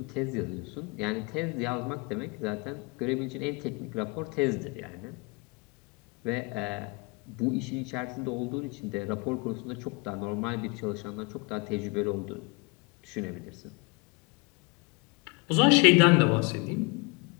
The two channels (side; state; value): right; quieter; 29.3 dB